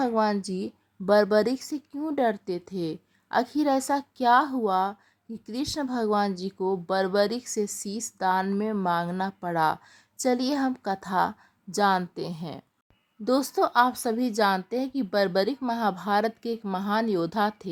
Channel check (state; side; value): identical; both; correlation 1.00